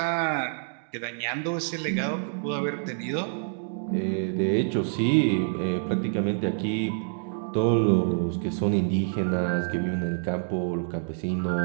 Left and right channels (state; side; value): silent; left; digital silence